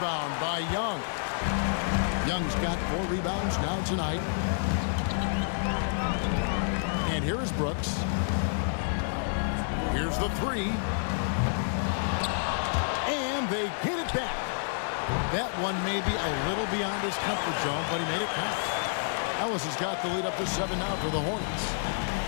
by Young. Young's got 4 rebounds now tonight. And here is Brooks. Here's the 3. And they get it back. That one may be a little beyond his comfort zone, but he made it count. Ellis has got the lead up to 7 now for the Hornets.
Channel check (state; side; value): silent; right; digital silence